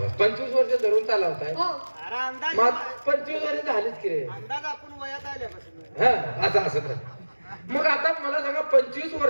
25 वर्ष धरून चालवताय. हो, अरे अंदाज मग 25 वर्ष झालीच की रे. अंदाज आपण वयात आल्यापासून. हा असं तर मग आता मला सांगा 25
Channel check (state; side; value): inverted; both; correlation -1.00